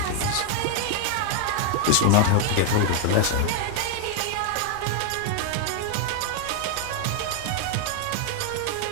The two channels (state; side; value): different; both; correlation 0.00